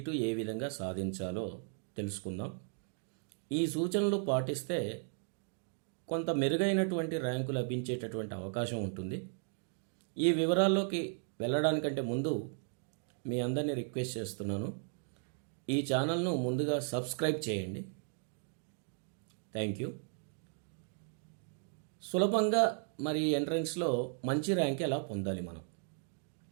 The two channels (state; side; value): silent; left; 54 dB below the other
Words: ఏ విధంగా సాధించాలో తెలుసుకుందాం. ఈ సూచనలు పాటిస్తే కొంత మెరుగైనటువంటి ర్యాంకు లభించేటటువంటి అవకాశం ఉంటుంది. ఈ వివరాల్లోకి వెళ్ళడానికంటే ముందు మీ అందరినీ రిక్వెస్ట్ చేస్తున్నాను, ఈ ఛానల్ను ముందుగా సబ్స్క్రైబ్ చేయండి. Thank you. సులభంగా మరి ఎంట్రన్స్లో మంచి ర్యాంక్ ఎలా పొందాలి, మనం